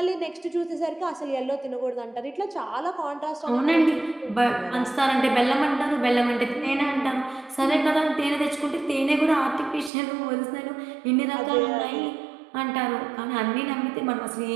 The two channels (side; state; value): left; drops out; at 9.9 s